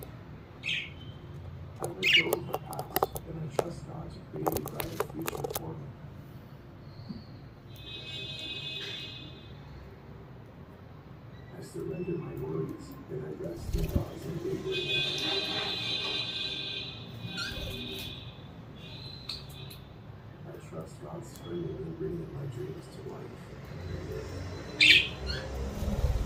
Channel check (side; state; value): both; identical; correlation 1.00